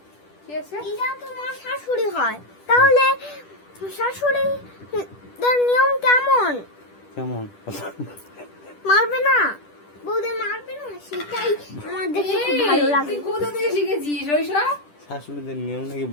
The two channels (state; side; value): late; right; 10 ms